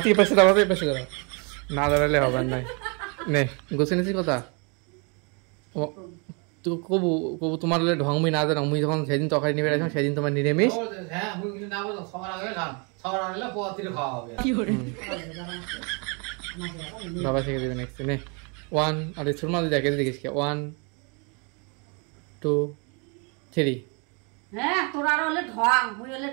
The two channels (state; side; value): quieter; left; 33.6 dB